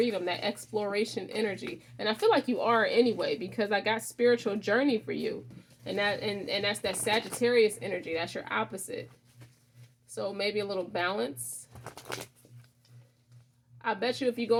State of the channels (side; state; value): both; identical; correlation 1.00